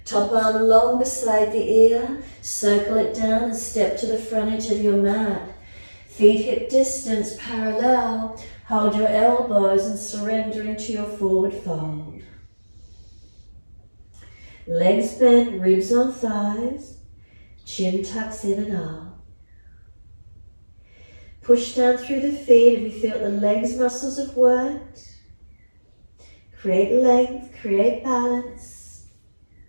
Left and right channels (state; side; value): inverted; both; correlation -1.00